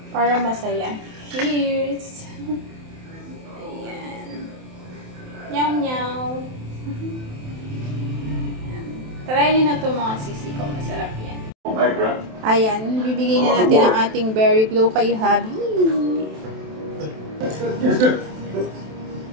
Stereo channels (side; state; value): left; late; 27 ms